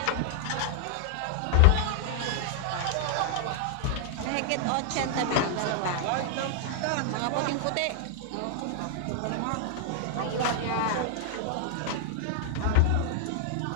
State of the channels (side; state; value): both; different; correlation 0.00